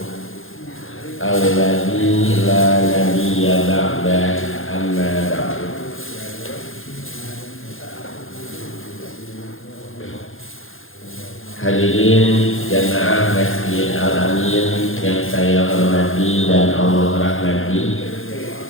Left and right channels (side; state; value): right; late; 0.59 ms